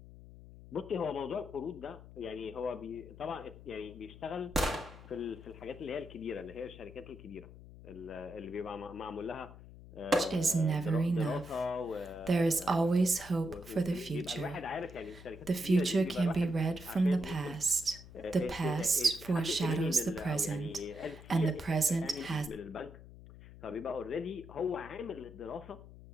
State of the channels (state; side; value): noise; left; hum, 17 dB below the sound